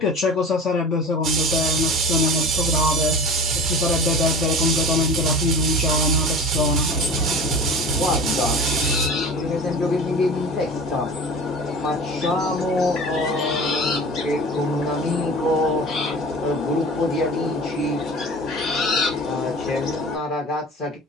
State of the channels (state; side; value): normal; both; correlation 0.37